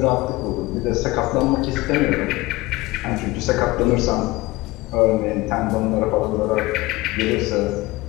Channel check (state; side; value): quieter; right; 20.5 dB